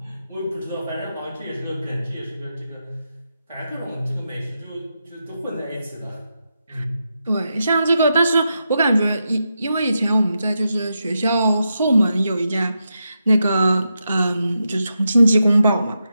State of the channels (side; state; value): both; inverted; correlation -0.86